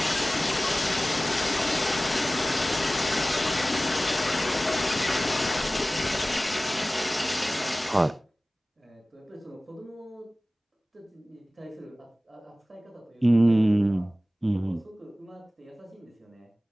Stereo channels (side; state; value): both; normal; correlation 0.97